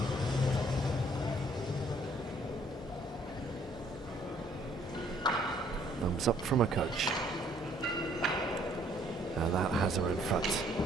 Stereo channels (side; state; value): both; normal; correlation 0.63